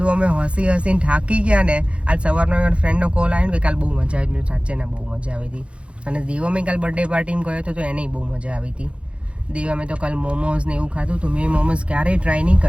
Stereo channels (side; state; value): left; late; 0.060 ms